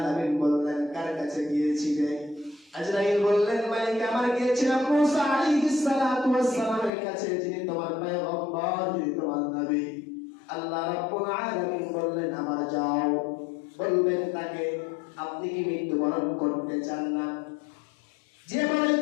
বললেন কার কাছে গিয়েছিলে? আজরাইল বললেন মালিক আমার গিয়েছিলাম মুসা আলাইহিস সালাতু ওয়াস সালামের কাছে, যিনি তোমার পয়গম্বর, যিনি তোমার নবী। আল্লাহ রাব্বুল আলামিন বললেন আমার যাও, বলবেন তাকে আপনি কি মৃত্যুবরণ করতে চান না? যে বলে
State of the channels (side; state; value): right; drops out; at 6.9 s